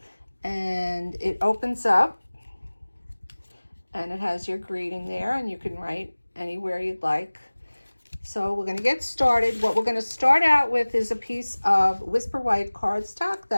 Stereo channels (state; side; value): inverted; both; correlation -1.00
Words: and it opens up, and it has your greeting there, and you can write anywhere you'd like. So we're going to get started. What we're going to start out with is a piece of Whisper White cardstock